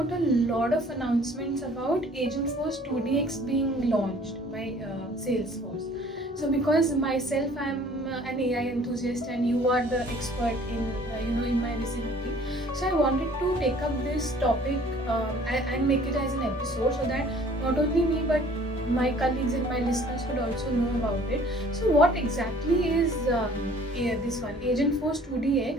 a lot of announcements about Agentforce 2DX being launched by Salesforce. So because myself I'm an AI enthusiast and you are the expert in my vicinity, so I wanted to take up this topic and make it as an episode so that not only me but my colleagues and my listeners could also know about it. So what exactly is this one, Agentforce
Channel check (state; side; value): normal; both; correlation 0.53